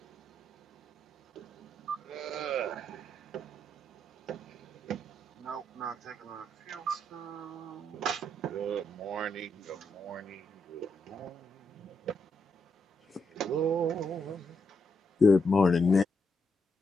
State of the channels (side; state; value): both; normal; correlation 0.80